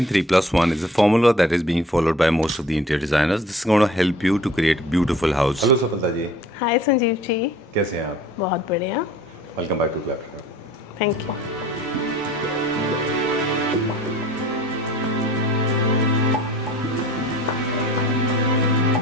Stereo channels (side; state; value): both; normal; correlation 0.49